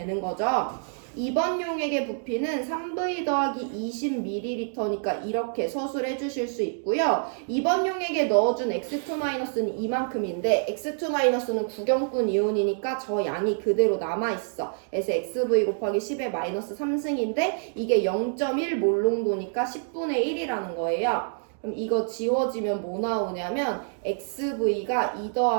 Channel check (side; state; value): left; silent; digital silence